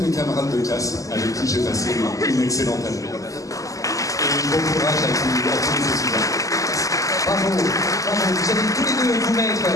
camarades de classe avec qui j'ai passé une excellente année. Et bon courage à tous les étudiants. Bravo, bravo. Vous allez tous les deux vous mettre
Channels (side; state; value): right; late; 0.16 ms